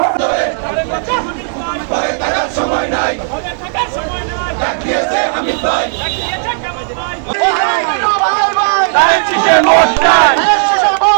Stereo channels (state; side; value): silent; left; digital silence